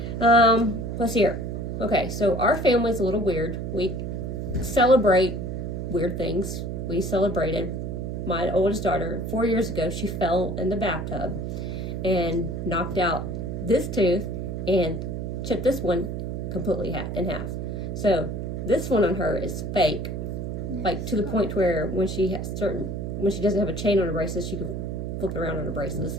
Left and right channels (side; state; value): right; noise; hum, 4 dB below the sound